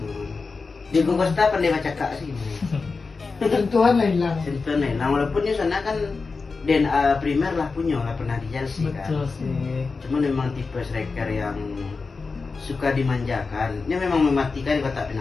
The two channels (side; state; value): right; quieter; 4.3 dB